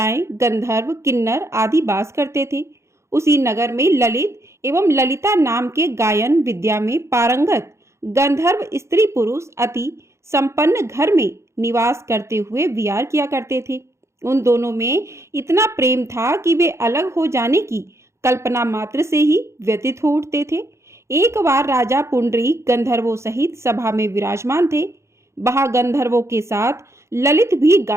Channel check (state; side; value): late; left; 0.14 ms